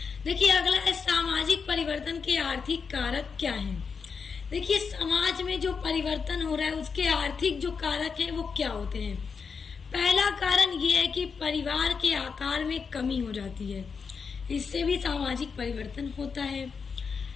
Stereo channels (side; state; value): right; quieter; 5.6 dB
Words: देखिए अगला है सामाजिक परिवर्तन के आर्थिक कारक क्या है। देखिए समाज में जो परिवर्तन हो रहा है उसके आर्थिक जो कारक हैं वो क्या होते हैं। पहला कारण ये है कि परिवार के आकार में कमी हो जाती है, इससे भी सामाजिक परिवर्तन होता है।